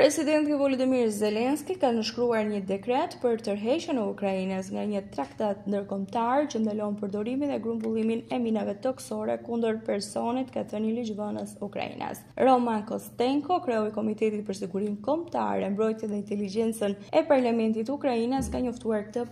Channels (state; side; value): identical; both; correlation 1.00